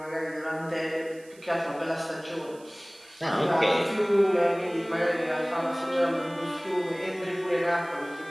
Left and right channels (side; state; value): right; noise; hiss, 25 dB below the sound